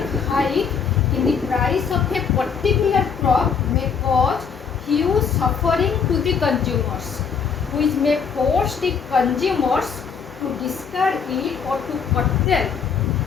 hike in the price of a particular crop may cause huge suffering to the consumers, which may force the consumers to discard it or to curtail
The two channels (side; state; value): right; quieter; 6.3 dB